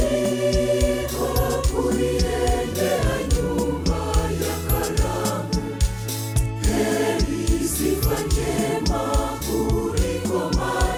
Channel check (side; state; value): both; identical; correlation 1.00